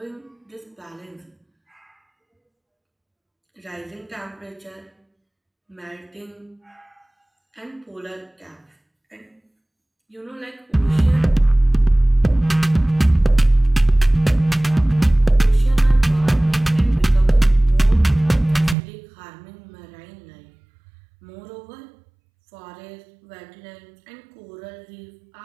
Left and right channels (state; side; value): drops out; left; at 18.8 s